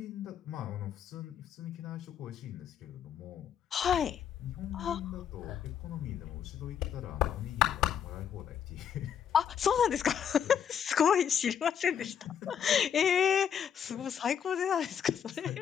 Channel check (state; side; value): quieter; right; 8.4 dB